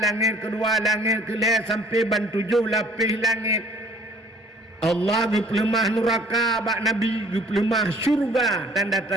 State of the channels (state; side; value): normal; both; correlation 0.55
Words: kedua langit kelih sampai ban 7 lapis langit Allah gepelemah neraka bak Nabi gepelemah syurga